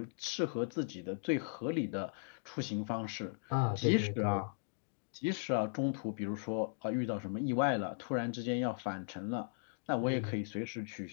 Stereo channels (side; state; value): right; silent; digital silence